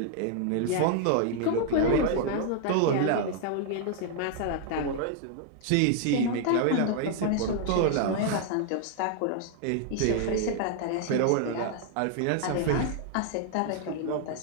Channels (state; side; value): different; both; correlation 0.00